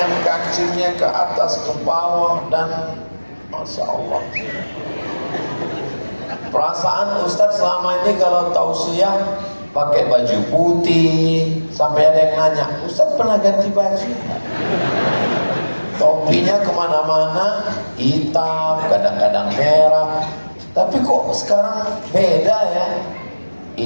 kancingnya ke atas ke bawah dan Masya Allah. Perasaan Ustadz selama ini kalau tausiah pakai baju putih, sampai ada yang nanya, Ustadz pernah ganti baju? Topinya kemana-mana hitam, kadang-kadang merah. Tapi kok sekarang beda ya?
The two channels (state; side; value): inverted; both; correlation -1.00